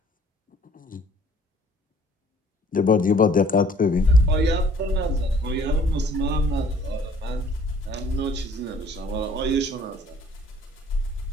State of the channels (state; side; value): normal; both; correlation 0.56